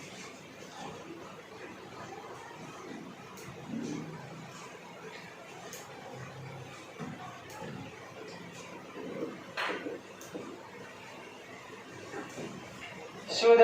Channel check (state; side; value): identical; both; correlation 1.00